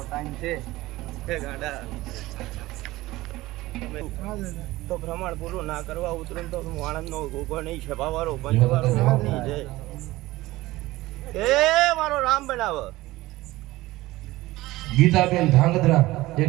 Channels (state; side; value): quieter; left; 18.4 dB